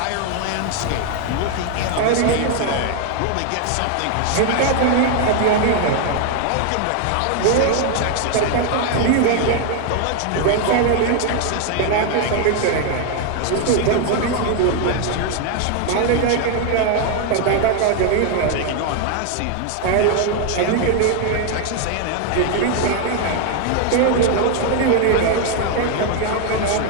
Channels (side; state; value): both; different; correlation 0.00